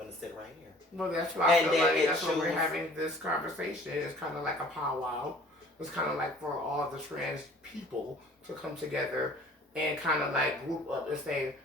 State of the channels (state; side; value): normal; both; correlation 0.51